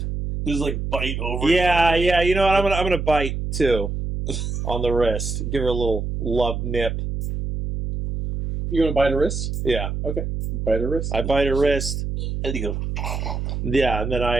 like bite over. Yeah, you know what? I'm gonna bite, too, on the wrist. Give her a little love nip. You gonna bite her wrist? Yeah. Okay. Bite her wrist. I bite her wrist. And you go, Yeah, and then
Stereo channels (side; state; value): right; noise; hum, 3 dB below the sound